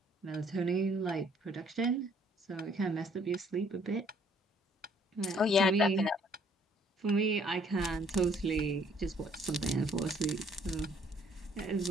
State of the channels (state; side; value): normal; both; correlation 0.62